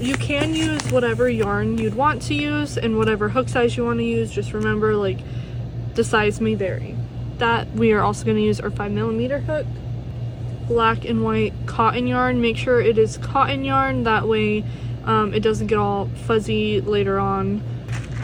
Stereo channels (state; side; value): identical; both; correlation 1.00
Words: can use whatever yarn you'd want to use and whatever hook size you want to use. Just remember, like, the size may vary. That we are also going to use our 5mm hook. Black and white cotton yarn. Make sure it is cotton yarn, that way it doesn't get all fuzzy later on.